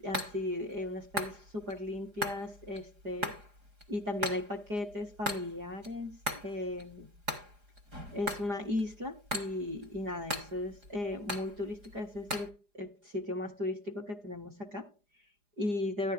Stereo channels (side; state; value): left; late; 4.9 ms